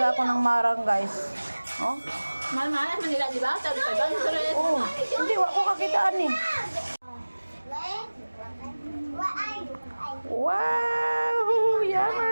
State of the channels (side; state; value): both; inverted; correlation -1.00